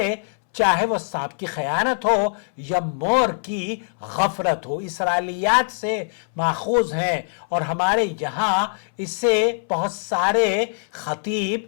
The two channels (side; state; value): right; silent; 64 dB below the other